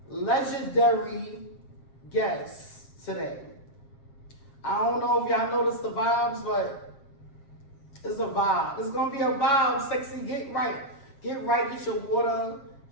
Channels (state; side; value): late; right; 7.5 ms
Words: legendary guest today. I don't know if y'all noticed the vibes, but it's a vibe. It's gonna be a vibe, sexy. Get right. Get right, get your water,